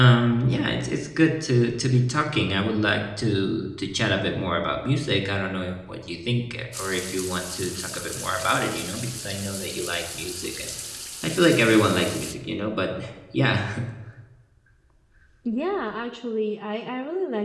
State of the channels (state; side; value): identical; both; correlation 1.00